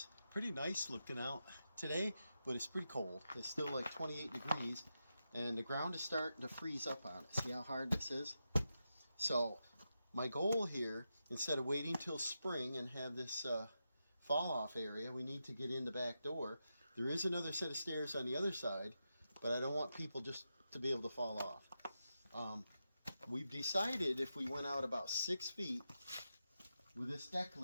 Pretty nice looking out today, but it's pretty cold. It's still like 28 degrees, and the ground is starting to freeze up on it. See how hard this is? So my goal here, instead of waiting till spring and have this fall off area, we need to get in the back door. There is another set of stairs on the other side, but I don't want people just to be able to fall off. We've decided if we went out about 6 feet with this deck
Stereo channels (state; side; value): inverted; both; correlation -0.88